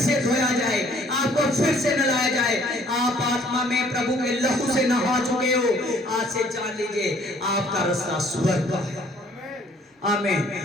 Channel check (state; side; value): normal; both; correlation 0.59